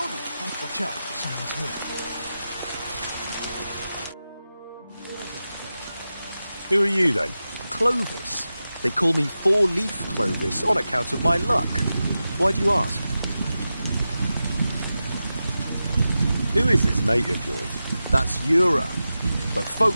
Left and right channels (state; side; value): inverted; both; correlation -0.92